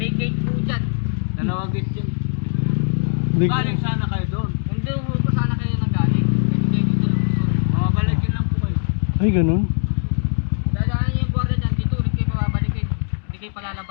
gate po dyan. Dalawang gate dyan. Di- Galing sana kayo doon. Hindi ho po sana kayo nanggaling. Kasi kayo dito lang po. Mamabalikin lang po kayo. Ay, ganun. Dadaan niyo yung guardia dyan. Dito ulit kayo pababalikin. Hindi kayo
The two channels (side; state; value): right; silent; 65 dB below the other